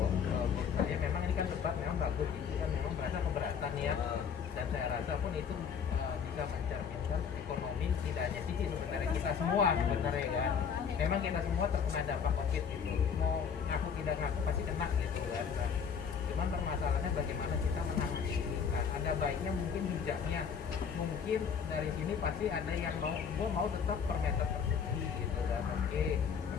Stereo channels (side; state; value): right; quieter; 6.9 dB